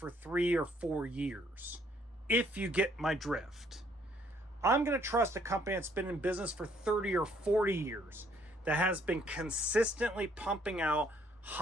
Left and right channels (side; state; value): both; normal; correlation 0.66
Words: 3 or 4 years, if you get my drift. I'm going to trust a company that's been in business for 30 or 40 years, that has been consistently pumping out